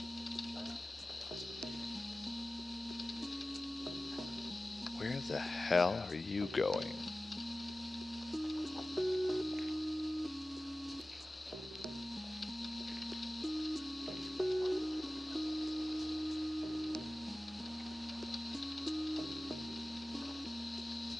Where the hell are you going?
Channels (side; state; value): both; normal; correlation 0.96